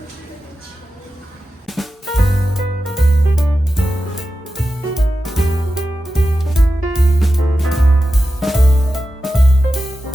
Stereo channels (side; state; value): both; normal; correlation 0.92